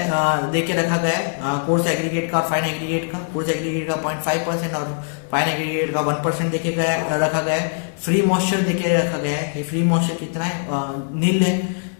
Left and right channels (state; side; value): silent; right; digital silence